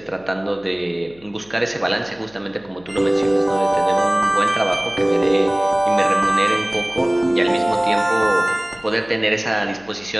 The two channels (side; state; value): left; noise; hum, 27 dB below the sound